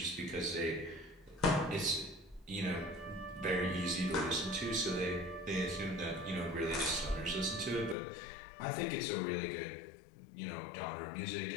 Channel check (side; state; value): right; drops out; at 8.0 s